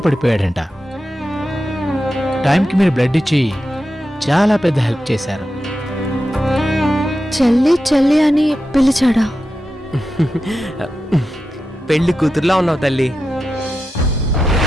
పడిపోయాడంట. టైంకి మీరు బ్లడ్ ఇచ్చి చాలా పెద్ద హెల్ప్ చేశారు. చెల్లి చెల్లి అని పిలిచాడా? పెళ్లి కూతురులా ఉన్నావు తల్లి.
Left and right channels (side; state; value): both; normal; correlation 0.90